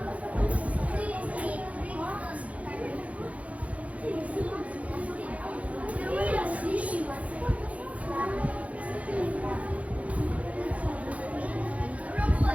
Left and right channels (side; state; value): left; late; 0.066 ms